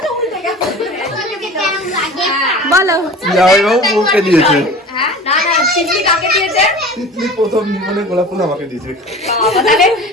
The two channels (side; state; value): both; normal; correlation 0.39